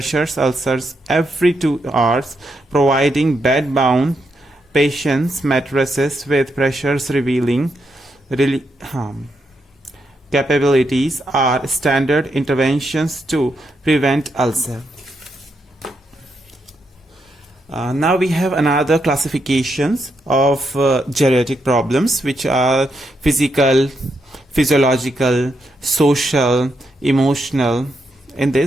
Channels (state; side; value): normal; both; correlation 0.81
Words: ulcers every 2 hours, providing bed-bound patients mattresses with pressures revealing capabilities are standard interventions to prevent ulcer. Now we have another classifications of geriatric problems, which are physical, physiological, social, emotional, In